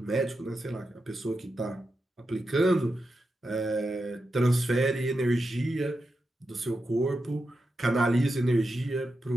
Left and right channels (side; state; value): both; normal; correlation 0.88